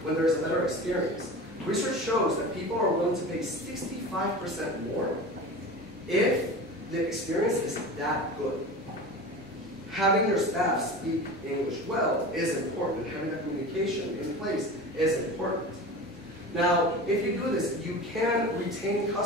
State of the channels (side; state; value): both; normal; correlation 0.32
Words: when there is a better experience. Research shows that people are willing to pay 65% more if the experience is that good. Having your staff speak English well is important. Having that communication in place is important. Now, if you do this, you can retain